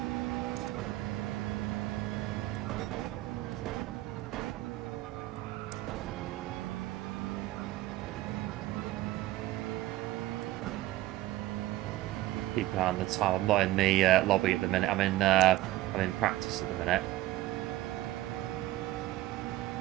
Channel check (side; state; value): left; quieter; 16.4 dB